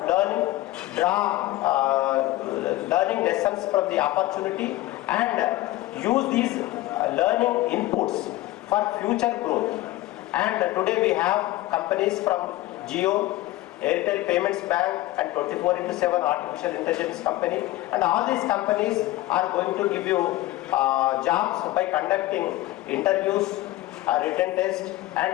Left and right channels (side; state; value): right; quieter; 17.0 dB